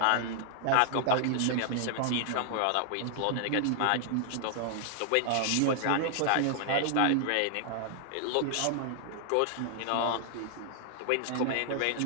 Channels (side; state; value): both; different; correlation 0.00